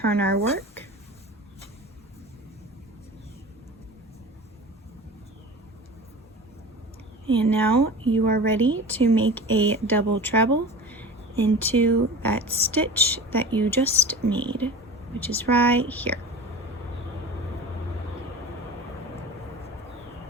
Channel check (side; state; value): both; normal; correlation 0.35